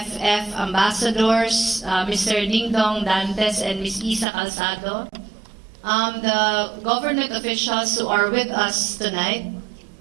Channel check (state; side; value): drops out; left; at 4.2 s